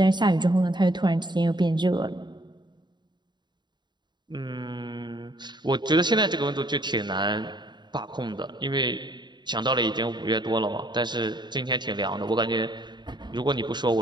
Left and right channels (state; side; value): late; left; 0.21 ms